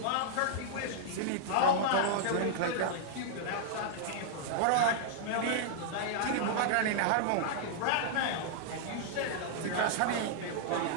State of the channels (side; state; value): both; different; correlation -0.01